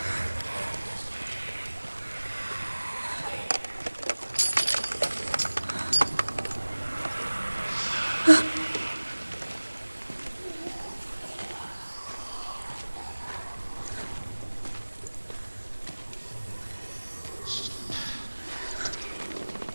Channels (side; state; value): both; inverted; correlation -1.00